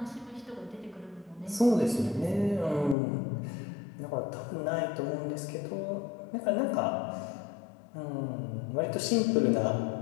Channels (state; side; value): drops out; right; at 3.0 s